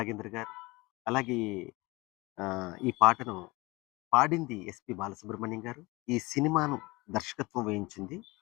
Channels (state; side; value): quieter; right; 23.1 dB